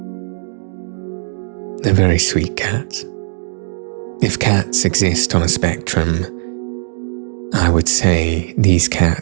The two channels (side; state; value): left; silent; digital silence